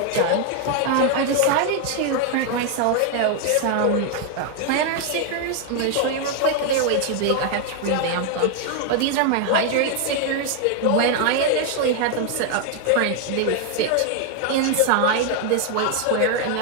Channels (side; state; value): both; different; correlation 0.01